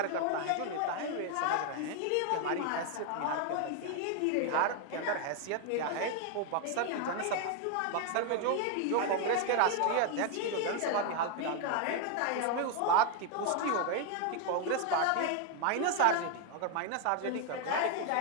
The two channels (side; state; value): both; different; correlation 0.00